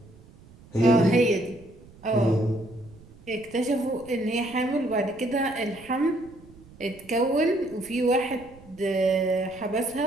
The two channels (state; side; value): noise; right; rumble, 23 dB below the sound